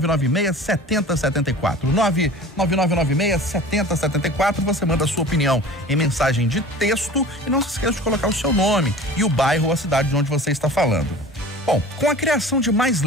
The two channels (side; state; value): both; normal; correlation 0.41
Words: 99996-7074. Você manda a sua opinião em mensagem de texto e não se esqueça de colocar o seu nome e o bairro ou a cidade de onde você está falando. Bom, com a criação de mais